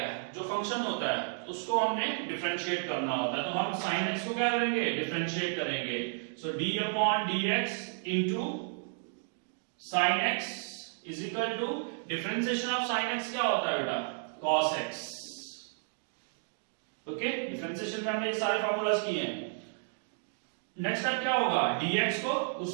है, जो फंक्शन होता है उसको हमने डिफरेंशिएट करना होता है। तो हम sin x को क्या करेंगे? डिफरेंशिएट करेंगे। So d upon dx into sin x is equal to differentiation of sin x क्या होता है बेटा? cos x। ओके, डिफरेंशिएशन में हमने ये सारे फार्मूलाज किए हैं। नेक्स्ट स्टेप क्या होगा? dx को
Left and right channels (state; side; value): silent; left; digital silence